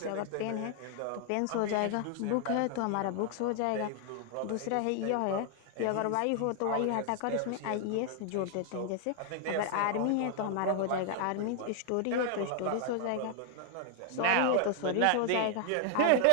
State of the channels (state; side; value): different; both; correlation 0.00